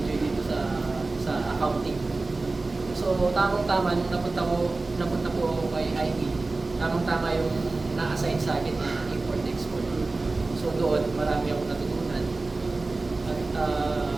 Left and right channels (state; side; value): quieter; left; 3.4 dB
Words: dito sa accounting. So tamang-tama nung napunta po ako kay IT, tamang-tama yung na-assign sa akin na import-export. So doon, marami akong natutunan. At